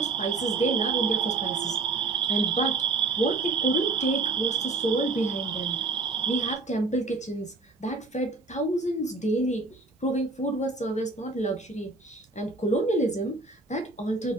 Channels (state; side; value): quieter; left; 3.6 dB